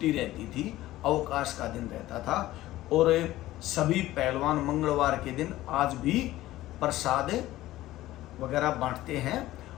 रहती थी, अवकाश का दिन रहता था। और सभी पहलवान मंगलवार के दिन आज भी प्रसाद वगैरह बांटते हैं।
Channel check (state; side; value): quieter; right; 15.9 dB